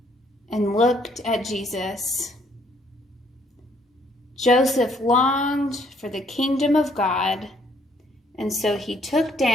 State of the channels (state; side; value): normal; both; correlation 0.66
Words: and looked at Jesus. Joseph longed for the kingdom of God, and so he took